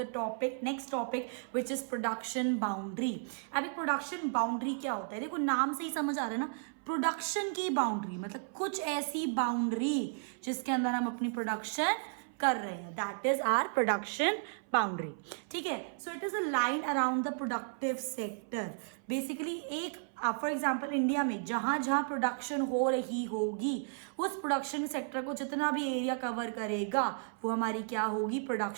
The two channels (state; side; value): silent; left; 55 dB below the other